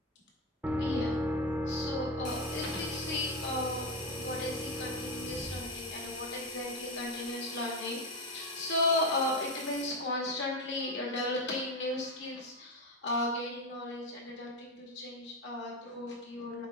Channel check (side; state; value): both; normal; correlation 0.15